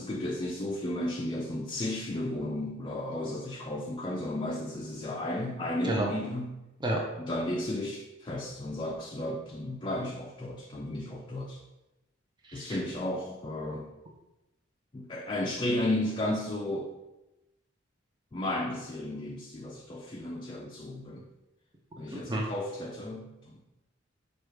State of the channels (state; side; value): normal; both; correlation 0.59